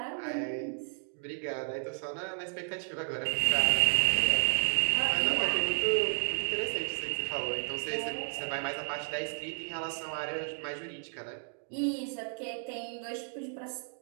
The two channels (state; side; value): silent; left; 56 dB below the other